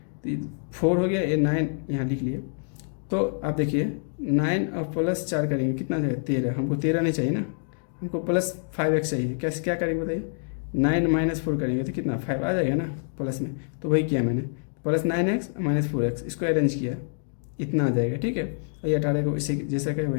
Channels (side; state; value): right; silent; digital silence